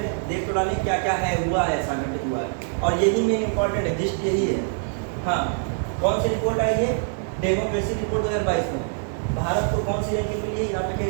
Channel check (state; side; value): silent; left; digital silence